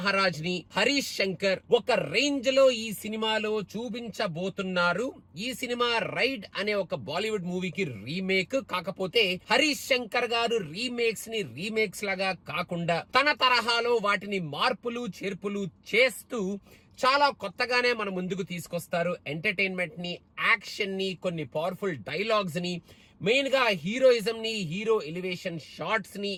ని హరీష్ శంకర్ ఒక రేంజ్ లో ఈ సినిమాలో చూపించబోతున్నారు. ఈ సినిమా రైడ్ అనే ఒక బాలీవుడ్ మూవీకి రీమేక్. కాకపోతే హరీష్ శంకర్ గారు రీమేక్స్ ని రీమేక్స్ లాగా కాకుండా తన తరహాలో వాటిని మార్పులు చేర్పులు చేస్తూ చాలా కొత్తగానే మన ముందుకు తీసుకొస్తారు. ఎంటర్టైన్మెంట్ ని, యాక్షన్ ని, కొన్ని పవర్ఫుల్ డైలాగ్స్ ని, మెయిన్ గా హీరోయిజం ని, హీరో ఎలివేషన్ షార్ట్స్ ని,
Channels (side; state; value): both; identical; correlation 1.00